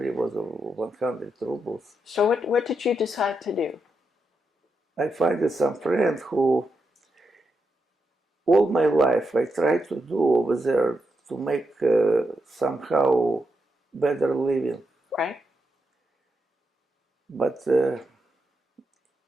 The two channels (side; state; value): both; normal; correlation 0.84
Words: was 100 rubles. So what did you decide to do? I find some friend who, all my life, I tried to do over there to make somehow better living. Right. But